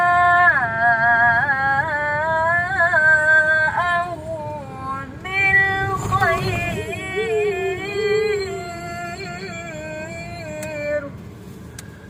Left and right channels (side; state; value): both; identical; correlation 1.00